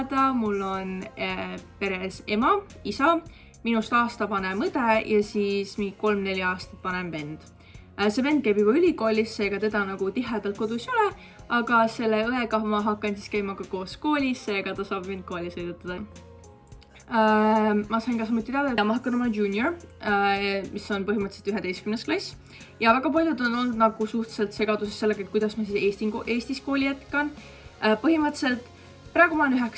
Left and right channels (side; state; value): both; identical; correlation 1.00